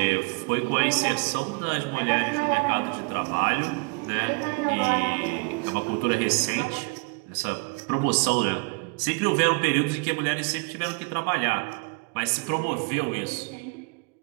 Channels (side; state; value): left; quieter; 31.4 dB